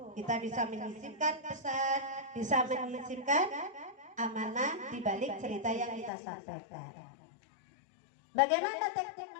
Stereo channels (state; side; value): drops out; right; at 6.1 s